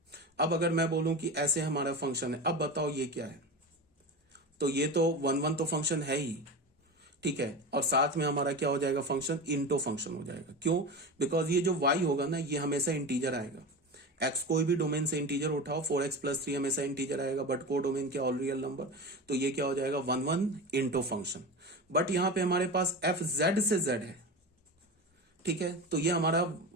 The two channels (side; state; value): both; normal; correlation 0.26